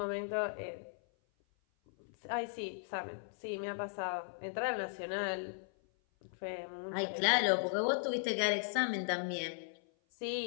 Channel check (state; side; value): silent; right; 53 dB below the other